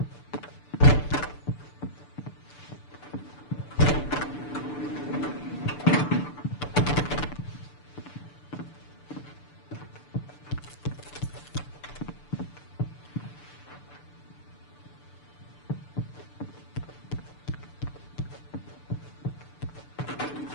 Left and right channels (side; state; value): right; late; 6.8 ms